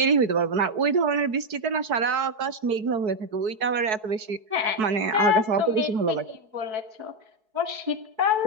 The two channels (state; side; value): late; left; 4.6 ms